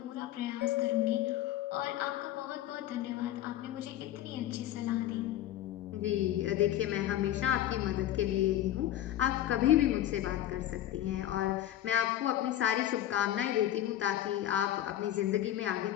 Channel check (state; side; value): quieter; right; 12.7 dB